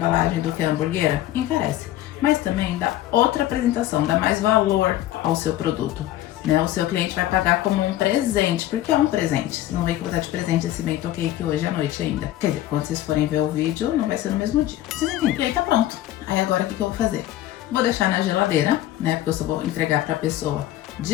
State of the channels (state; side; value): quieter; right; 13.9 dB